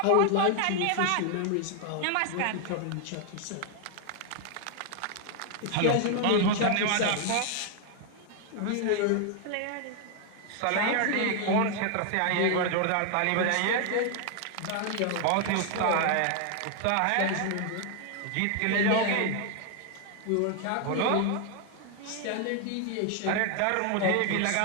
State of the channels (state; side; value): different; both; correlation 0.00